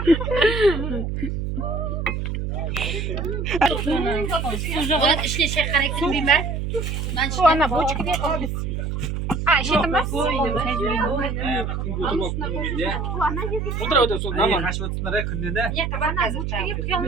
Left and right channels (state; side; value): noise; right; hum, 3 dB below the sound